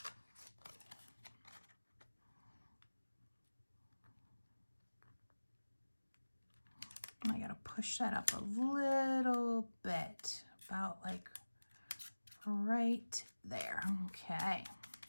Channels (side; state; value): both; inverted; correlation -1.00